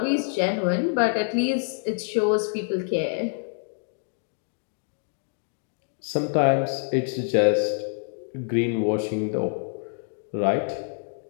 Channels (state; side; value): silent; right; 61 dB below the other